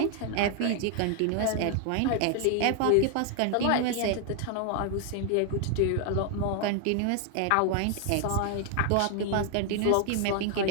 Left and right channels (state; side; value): different; both; correlation 0.00